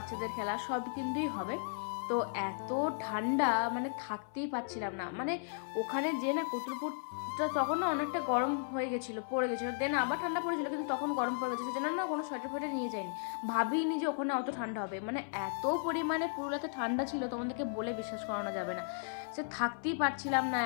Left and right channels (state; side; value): silent; right; 54 dB below the other